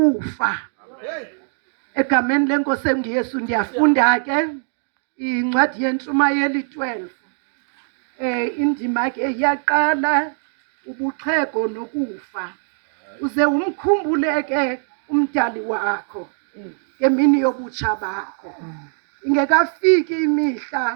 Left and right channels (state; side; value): silent; left; digital silence